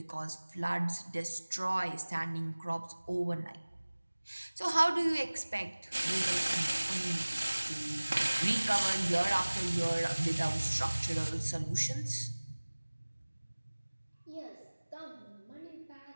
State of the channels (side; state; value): both; inverted; correlation -1.00